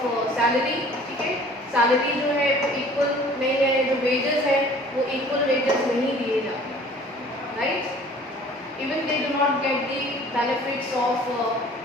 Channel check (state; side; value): normal; both; correlation 0.50